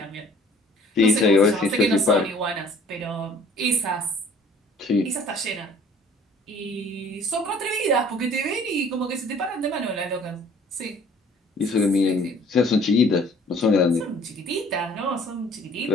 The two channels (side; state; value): both; normal; correlation 0.54